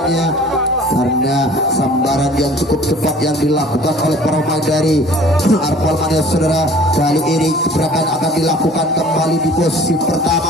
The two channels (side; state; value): both; normal; correlation 0.49